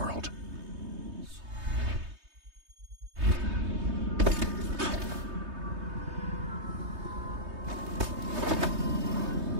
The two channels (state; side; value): late; left; 3.2 ms